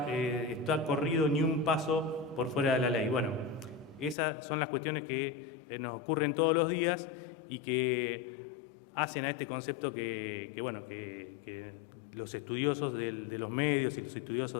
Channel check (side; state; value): right; drops out; at 4.2 s